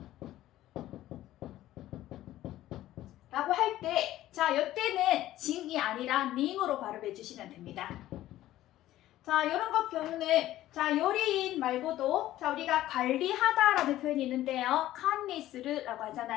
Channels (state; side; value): quieter; right; 14.4 dB